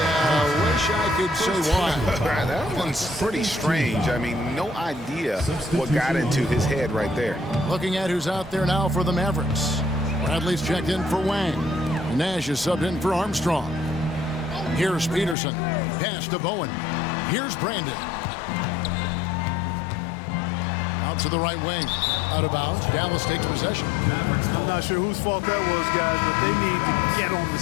Wish I could say why. That one's pretty strange. I mean, no idea what got into his head right there. Looking at who's out there now for the Mavericks. Bradley's checked in for Wang. Nash is subbed in for Armstrong. Here's Peterson. Pass to Bowen. Here's Brandon. Out to the right wing. Out of bounds. Dallas takes possession. I'm not sure whose fault that was, guys, but they need to get on the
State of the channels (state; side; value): drops out; right; at 15.4 s